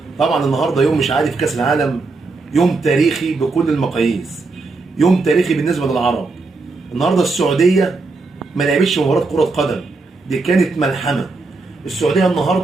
طبعا النهارده يوم مش عادي في كاس العالم، يوم تاريخي بكل المقاييس، يوم تاريخي بالنسبه للعرب. النهارده السعوديه ما لعبتش مباراه كره قدم، دي كانت ملحمه. السعوديه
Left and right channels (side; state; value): left; quieter; 3.8 dB